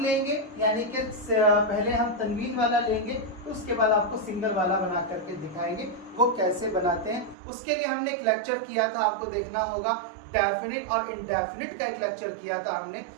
लेंगे, यानी कि पहले हम तनवीन वाला लेंगे, तो उसके बाद आपको सिंगल वाला बना करके दिखाएंगे वो कैसे बनाते हैं। उसके लिए हमने एक लेक्चर किया था, आपको देखना होगा। डेफिनिट और इनडेफिनिट का एक लेक्चर किया था हमने,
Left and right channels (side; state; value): left; drops out; at 7.4 s